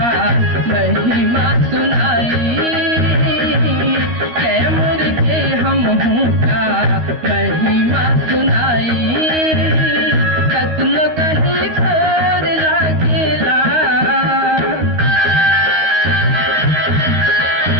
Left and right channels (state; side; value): late; left; 13 ms